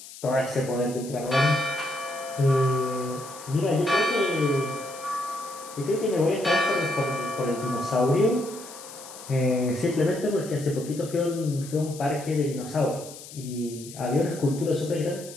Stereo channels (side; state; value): left; noise; hiss, 15 dB below the sound